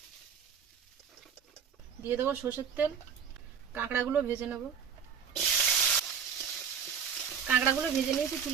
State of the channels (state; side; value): quieter; left; 7.2 dB